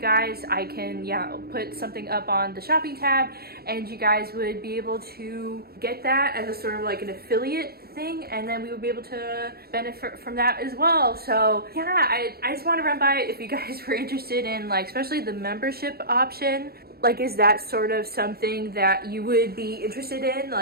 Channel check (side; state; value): left; late; 0.45 ms